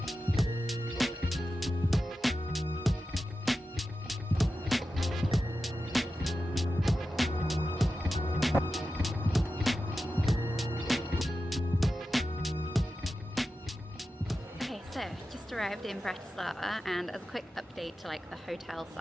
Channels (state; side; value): normal; both; correlation 0.92